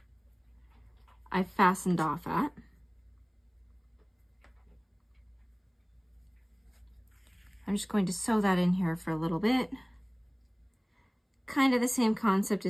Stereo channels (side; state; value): both; identical; correlation 1.00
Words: I fastened off at. I'm just going to sew that in here for a little bit. Kind of the same concept